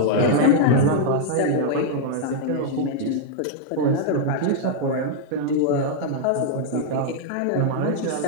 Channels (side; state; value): both; different; correlation -0.01